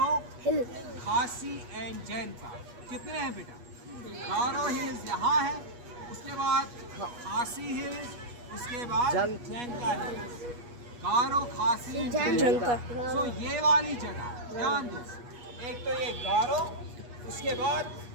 खासी एंड जैंता। कितने हैं बेटा? गारो हिल्स यहाँ है, उसके बाद खासी हिल्स, उसके बाद जैंता हिल्स। गारो, खासी, जैंता। सो ये वाली जगह ध्यान दो, एक तो ये गारो, उसके बाद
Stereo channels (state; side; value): late; left; 8.3 ms